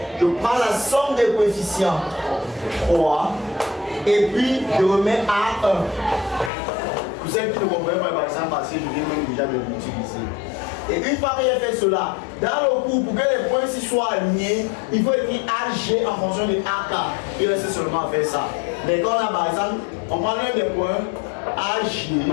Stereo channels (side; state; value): right; drops out; at 6.5 s